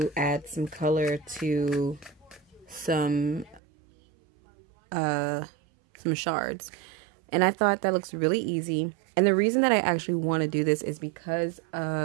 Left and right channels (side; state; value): left; drops out; at 3.6 s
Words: add some color to some shards. And I thought that looks really easy. And the reason that I actually want to do this is because